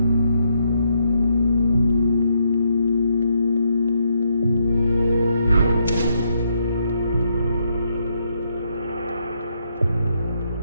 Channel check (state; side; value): inverted; both; correlation -0.76